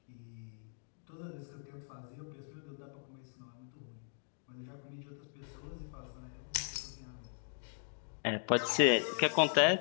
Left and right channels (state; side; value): silent; right; digital silence